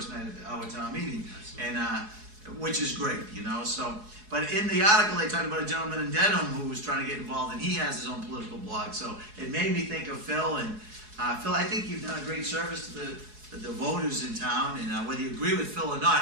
night of our town meeting, and which is great, So, but in the article they talked about a gentleman in Dedham who was trying to get involved, and he has his own political blog. So it made me think of Phil. And Phil, I think you've done a great service to the voters in town. And whether you agree with Phil or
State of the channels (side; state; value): left; late; 4.7 ms